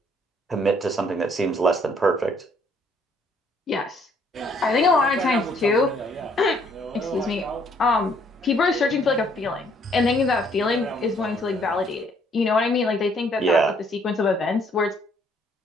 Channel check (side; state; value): both; normal; correlation 0.65